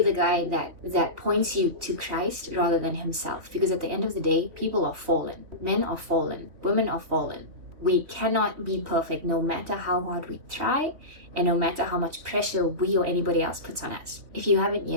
the guy that points you to Christ rather than himself. Because at the end of the day, people are fallen. Men are fallen. Women are fallen. We cannot be perfect no matter how hard we try and no matter how much pressure we or anybody else puts on us. If you haven't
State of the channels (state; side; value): late; left; 3.1 ms